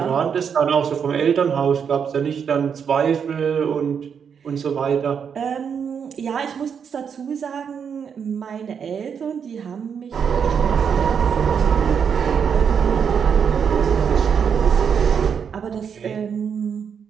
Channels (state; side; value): quieter; left; 7.1 dB